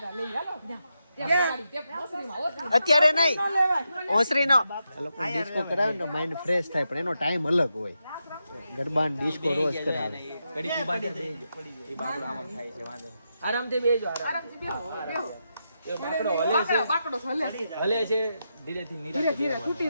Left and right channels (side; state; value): both; inverted; correlation -0.85